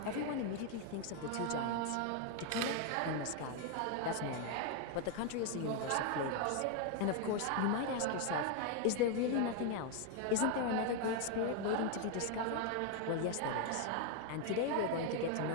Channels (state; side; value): different; both; correlation 0.01